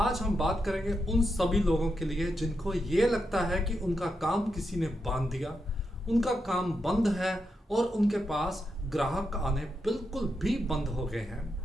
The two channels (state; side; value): normal; both; correlation 0.85